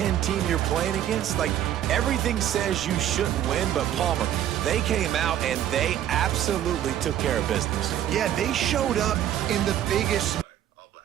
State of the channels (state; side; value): quieter; left; 11.3 dB